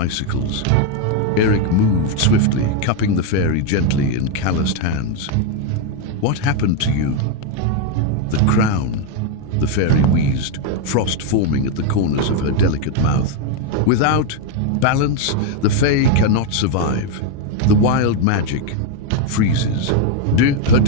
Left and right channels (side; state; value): both; different; correlation 0.01